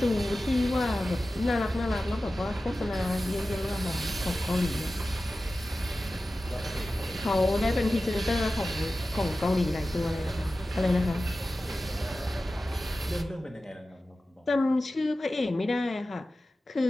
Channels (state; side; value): normal; both; correlation 0.95